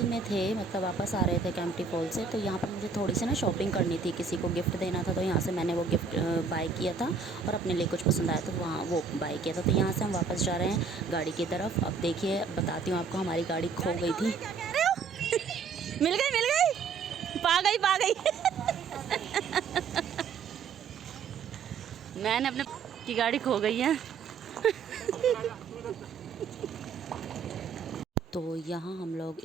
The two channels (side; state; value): left; quieter; 5.3 dB